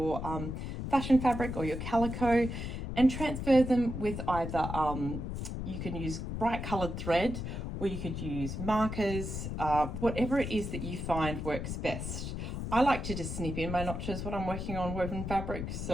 fashion fabric or your calico, and transfer them with either you can use bright coloured thread, or you could use markers, whatever it is that you find works best. I like to just snip in my notches when I'm working on woven fabric.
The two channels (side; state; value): left; noise; rumble, 5 dB below the sound